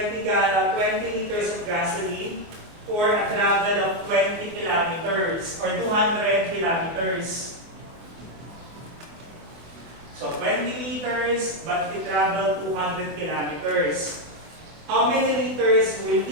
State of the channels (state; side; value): late; left; 24 ms